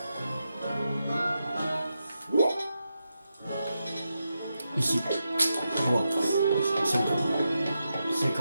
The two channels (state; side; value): inverted; both; correlation -0.87